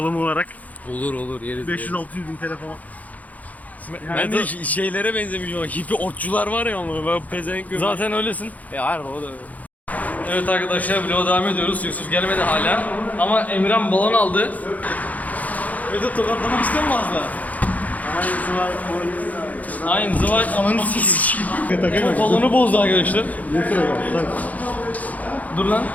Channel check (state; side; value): late; right; 0.076 ms